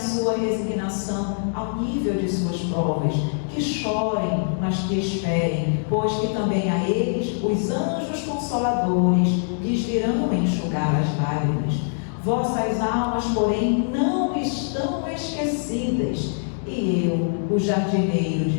resignação ao nível de suas provas, que chorem, mas que esperem, pois que também a eles os anjos consoladores lhes virão enxugar as lágrimas. Vossas almas, porém, não estão esquecidas, e eu, o jardineiro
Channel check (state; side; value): silent; right; digital silence